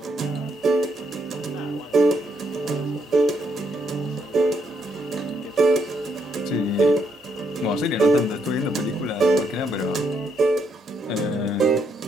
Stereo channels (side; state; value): both; normal; correlation 0.76